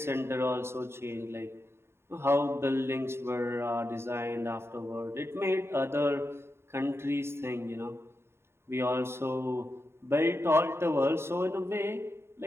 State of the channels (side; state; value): left; late; 0.12 ms